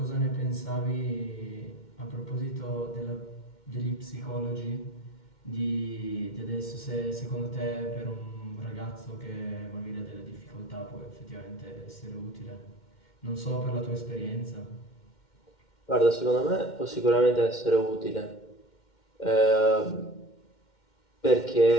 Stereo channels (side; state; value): right; late; 2.1 ms